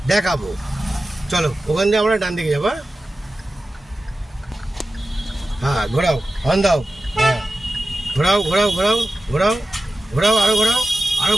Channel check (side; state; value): both; normal; correlation 0.94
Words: দেখাবো। চলো ওখান থেকে আমরা ডান দিকে যাবো। হ্যাঁ ঘোরাও, হর্ন দাও। হ্যাঁ ঘোরাও ঘোরাও ঘোরাও ঘোরাও ঘোরাও, আরো ঘোরাও, আরো